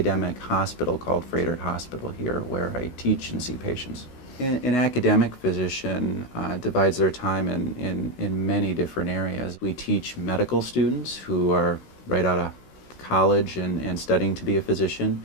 hospital called Froedtert Hospital here, where I teach and see patients. An academic physician divides their time in many different areas. We teach medical students who are right out of college and studying to be a physician.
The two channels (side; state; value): right; late; 16 ms